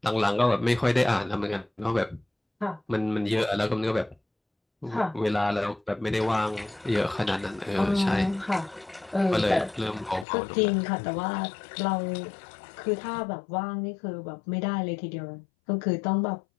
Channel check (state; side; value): drops out; right; at 10.2 s